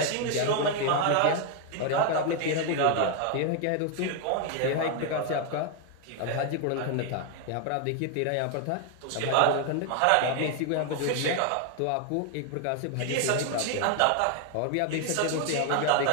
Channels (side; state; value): both; different; correlation 0.01